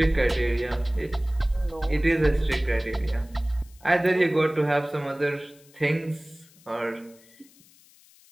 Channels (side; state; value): left; noise; hiss, 27 dB below the sound